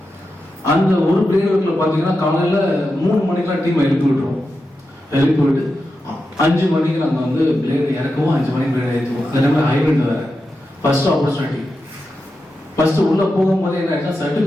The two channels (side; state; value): both; normal; correlation 0.89